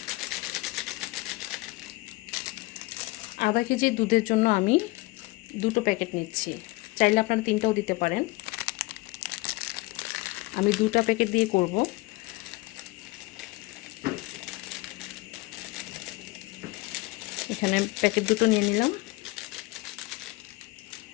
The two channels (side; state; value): right; quieter; 22.4 dB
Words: আধা কেজি দুধের জন্য আমি দুটো প্যাকেট নিচ্ছি। চাইলে আপনারা তিনটাও দিতে পারেন। আমি দুটো প্যাকেট দিয়ে করব। এখানে প্যাকেট দুটো নিয়ে নিলাম।